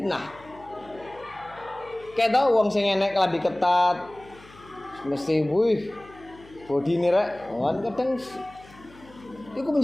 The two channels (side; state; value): left; noise; hum, 23 dB below the sound